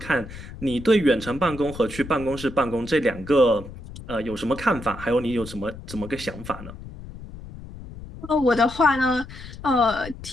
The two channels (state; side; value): noise; left; rumble, 13 dB below the sound